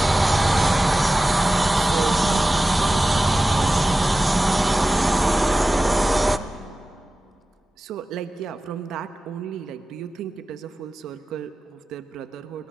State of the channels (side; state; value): both; normal; correlation 0.95